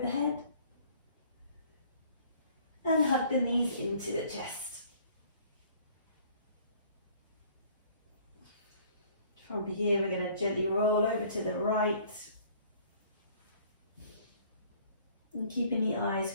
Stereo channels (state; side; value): inverted; both; correlation -0.56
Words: head. And hug the knees into the chest. From here, we're going to gently roll over to the right. And keeping the eyes